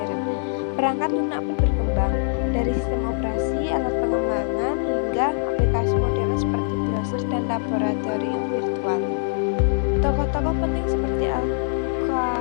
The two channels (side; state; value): right; silent; digital silence